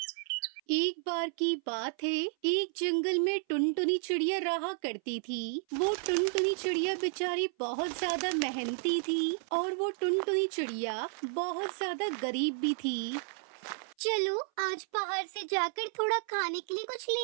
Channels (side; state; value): left; silent; 56 dB below the other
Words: एक बार की बात है, एक जंगल में टुनटुनी चिड़िया रहा करती थी। वो टुनटुनी चिड़िया बेचारी बहुत ज्यादा मेहनती थी और वो टुनटुनी चिड़िया बहुत ज्यादा गरीब भी थी। चलो आज बाहर से जाकर थोड़ा खाने के लिए कुछ